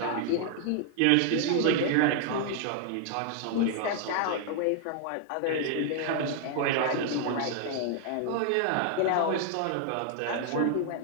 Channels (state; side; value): different; both; correlation 0.00